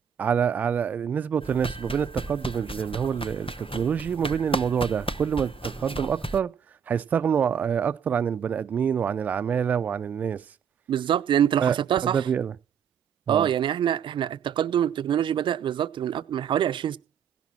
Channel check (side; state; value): left; quieter; 7.7 dB